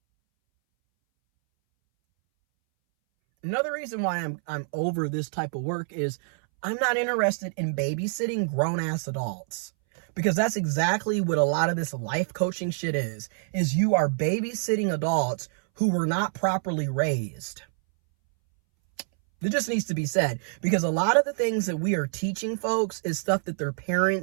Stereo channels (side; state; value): left; silent; 61 dB below the other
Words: Another reason why I'm over this type of work is I'm not interested in babysitting grown-ass adults. Because that's exactly what a lot of this life coaching shit is you are babysitting adults who were not properly raised. It just needs to be said. Because a lot of the things that we are teaching folks is stuff that their